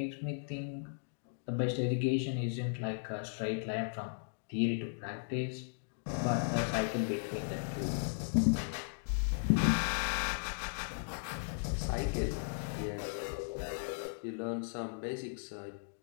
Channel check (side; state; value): right; silent; digital silence